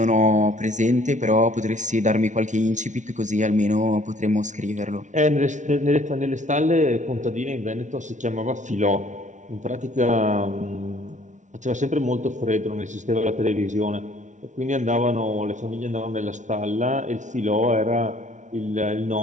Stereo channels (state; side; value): late; left; 0.36 ms